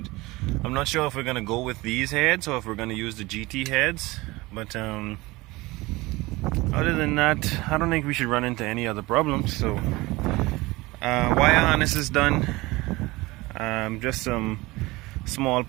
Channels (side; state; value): left; quieter; 21.3 dB